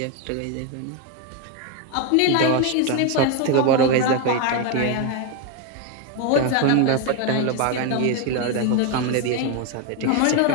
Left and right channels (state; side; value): different; both; correlation 0.02